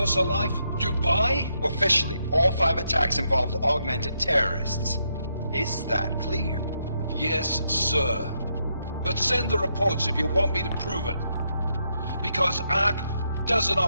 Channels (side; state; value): both; inverted; correlation -0.79